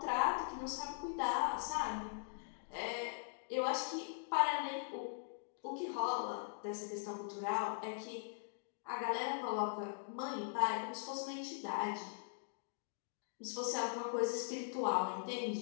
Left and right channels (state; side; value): silent; right; digital silence